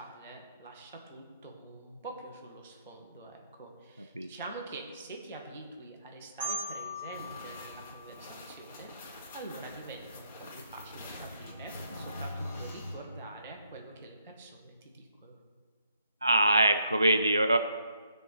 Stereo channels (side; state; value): both; inverted; correlation -0.73